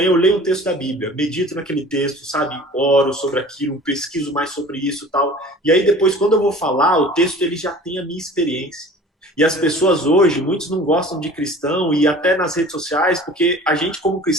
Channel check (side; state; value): both; normal; correlation 0.44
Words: eu leio um texto da Bíblia, medito naquele texto, sabe, oro sobre aquilo, pesquiso mais sobre isso e tal. E aí depois quando eu vou falar, o texto ele já tem a minha experiência. E as pessoas hoje, muitos não gostam de cristão e até nas redes sociais, porque a gente como